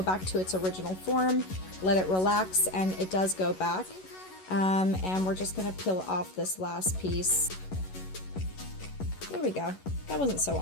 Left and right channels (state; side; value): late; right; 11 ms